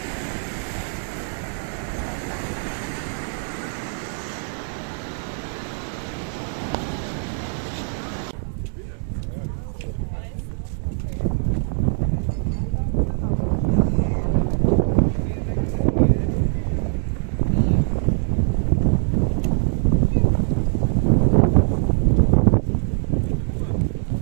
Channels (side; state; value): left; silent; 61 dB below the other